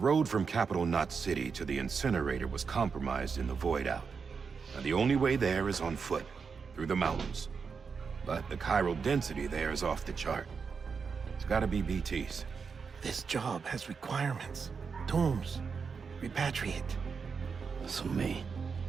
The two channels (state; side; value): quieter; left; 5.6 dB